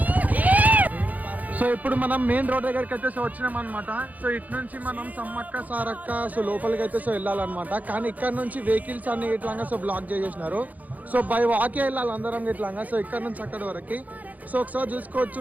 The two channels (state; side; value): late; left; 0.079 ms